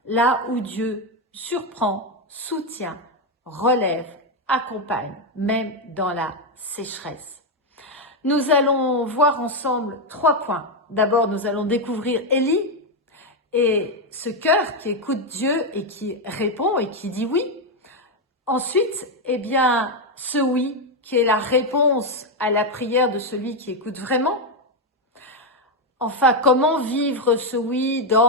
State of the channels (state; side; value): normal; both; correlation 0.05